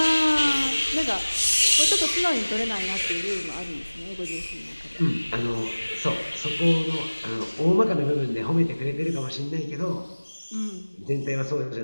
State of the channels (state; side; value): inverted; both; correlation -1.00